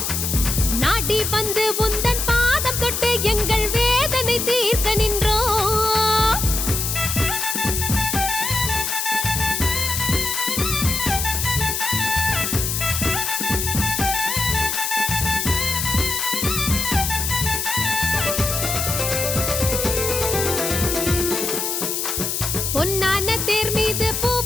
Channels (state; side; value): noise; left; hiss, 1 dB below the sound